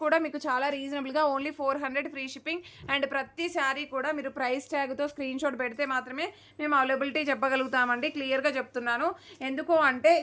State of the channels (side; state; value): both; identical; correlation 1.00